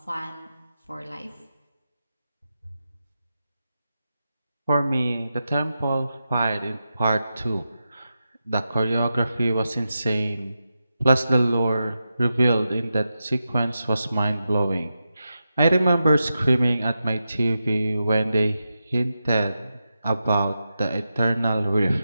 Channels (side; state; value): both; inverted; correlation -0.90